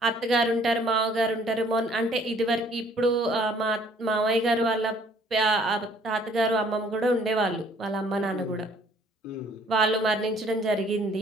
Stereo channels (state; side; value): normal; both; correlation 0.59